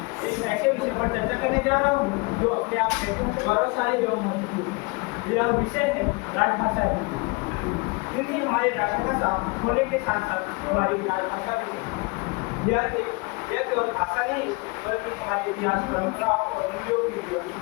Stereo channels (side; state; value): right; quieter; 28.1 dB